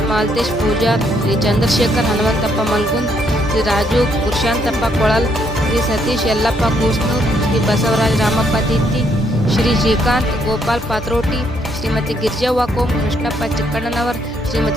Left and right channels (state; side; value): normal; both; correlation 0.72